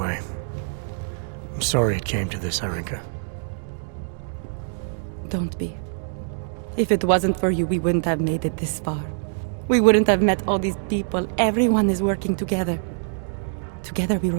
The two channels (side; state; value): left; silent; digital silence